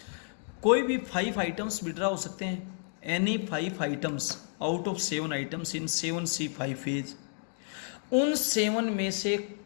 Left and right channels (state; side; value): silent; right; 55 dB below the other